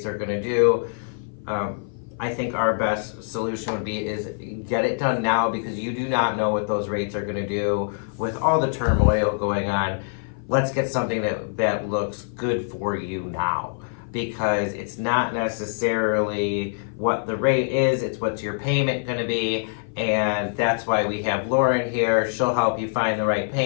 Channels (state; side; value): silent; right; 56 dB below the other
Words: are going to do, I think our best solution would be is get it done now, because you do not know what those rates are going to do with all the turmoil going on. Let's get something that looks good for you now, because it's not necessarily what the rate is, it's what's your payment going to be. And that's why we have Lauren here. She'll help you find the right